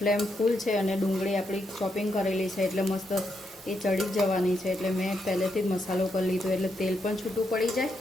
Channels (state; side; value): normal; both; correlation 0.81